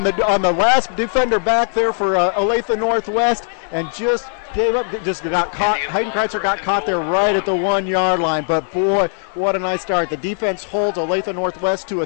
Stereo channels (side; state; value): right; silent; 57 dB below the other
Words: the last defender back there for Olathe-Northwest, and just gave up, just got caught. Hayden Kreitzer got caught there right at the 1-yard line. But boy, what a nice start. The defense holds Olathe-Northwest to a